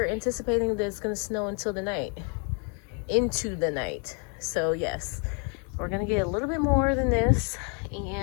anticipating that it's gonna snow until the night, into the night. So yes, we're gonna get a little bit more than this,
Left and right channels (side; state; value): right; quieter; 38.2 dB